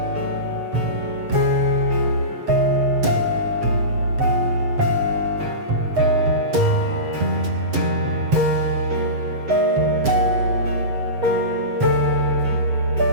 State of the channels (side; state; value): left; late; 7.7 ms